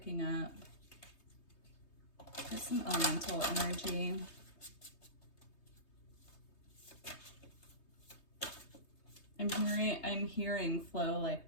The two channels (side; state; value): right; late; 3.2 ms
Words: up. There's some elemental energy. I'm hearing flow like